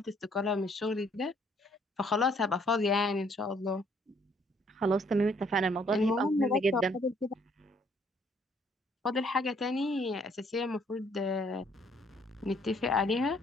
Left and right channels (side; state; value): both; normal; correlation 0.64